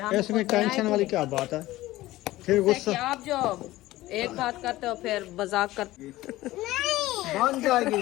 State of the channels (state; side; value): quieter; right; 17.1 dB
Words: इसमें टेंशन वाली क्या बात है? फिर गुस्सा आप जो एक बात करते हो फिर मजाक करते बन जाएगी